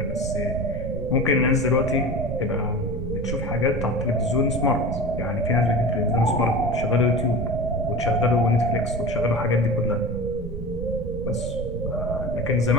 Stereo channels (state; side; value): noise; right; rumble, 8 dB below the sound